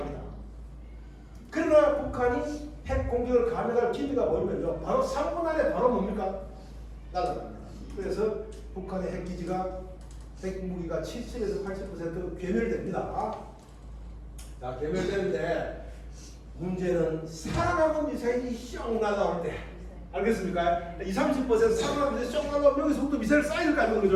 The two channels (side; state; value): both; identical; correlation 1.00